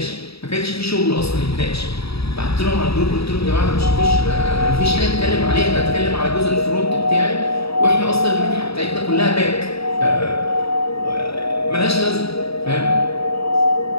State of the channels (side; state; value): right; late; 0.77 ms